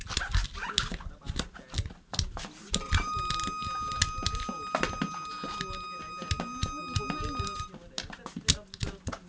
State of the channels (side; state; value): both; identical; correlation 1.00